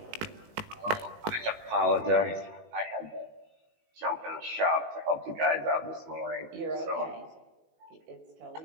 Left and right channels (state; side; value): late; left; 19 ms